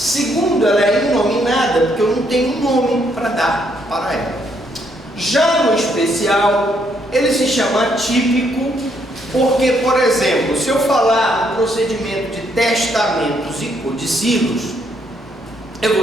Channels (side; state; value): both; normal; correlation 0.72